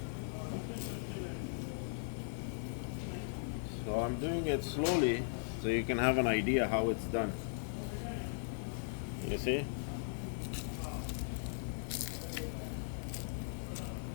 So I'm doing it slowly so you can have an idea how it's done. You see?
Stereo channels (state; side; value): silent; right; digital silence